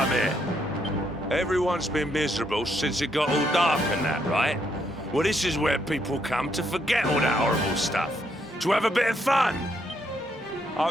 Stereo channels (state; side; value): normal; both; correlation 0.75